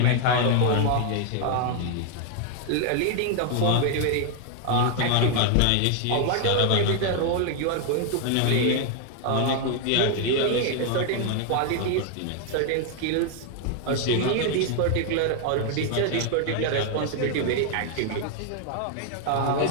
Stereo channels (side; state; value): both; different; correlation 0.00